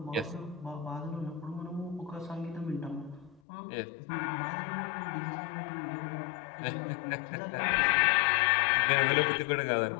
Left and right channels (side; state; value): right; drops out; at 3.4 s